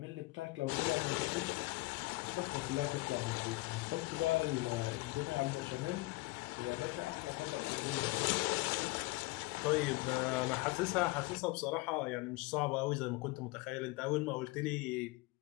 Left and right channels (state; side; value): quieter; right; 22.6 dB